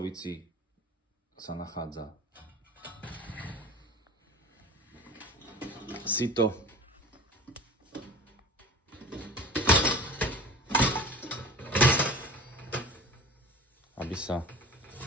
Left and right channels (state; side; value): normal; both; correlation 0.38